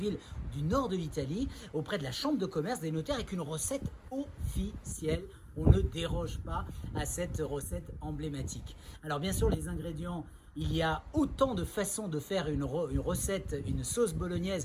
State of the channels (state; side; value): identical; both; correlation 1.00